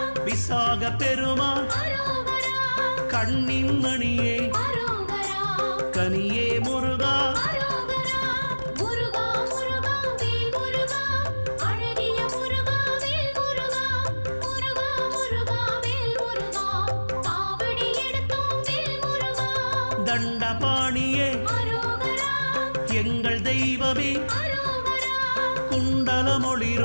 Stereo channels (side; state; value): both; inverted; correlation -1.00